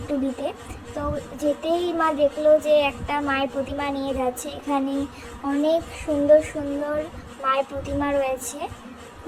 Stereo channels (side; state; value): both; identical; correlation 1.00